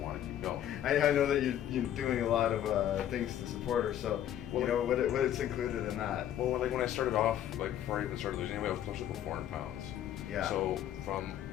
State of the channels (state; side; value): quieter; right; 11.1 dB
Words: to keep going. I know that you're doing a lot of things to support her, so you know what it's included in that. Well, like when I started off, like before I even started losing weight, I was close to 400 pounds. Yeah. So from